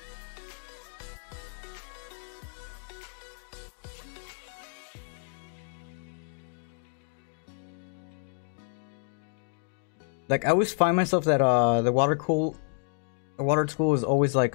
Like, I always find myself that the water tool is always like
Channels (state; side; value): silent; right; 58 dB below the other